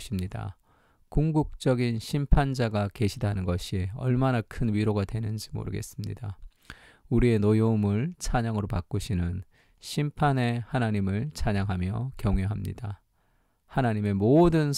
궁극적인 심판자가 계시다는 것이 얼마나 큰 위로가 되는지 모르겠습니다. 우리의 노여움을 찬양으로 바꾸시는 심판의 하나님을 찬양하며 경외합니다. 하나님의 모든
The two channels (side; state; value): both; identical; correlation 1.00